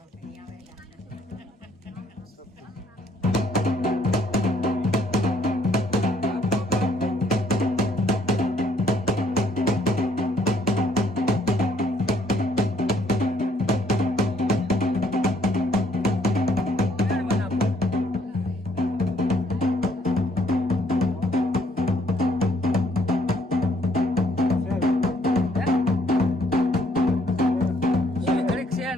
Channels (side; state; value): both; normal; correlation 0.66